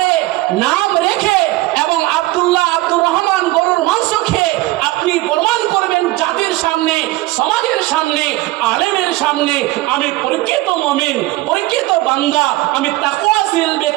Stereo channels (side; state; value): left; quieter; 19.0 dB